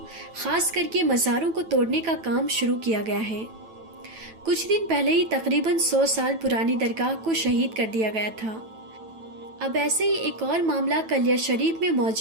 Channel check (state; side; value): late; left; 9.1 ms